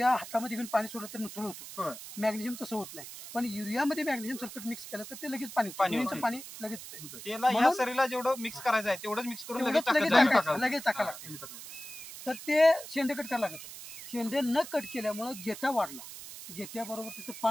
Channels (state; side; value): noise; right; hiss, 12 dB below the sound